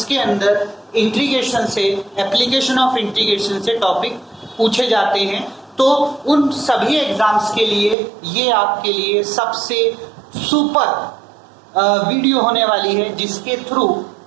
अंदर इंटीग्रेशन से, एप्लीकेशन ऑफ इंटीग्रेशन से टॉपिक पूछे जाते हैं। तो उन सभी एग्जाम्स के लिए ये आपके लिए सबसे सुपर वीडियो होने वाली है, जिसके थ्रू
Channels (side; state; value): left; drops out; at 8.0 s